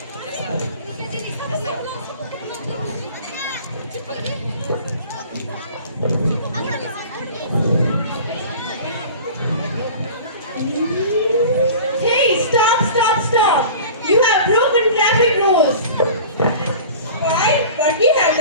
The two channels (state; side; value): inverted; both; correlation -0.40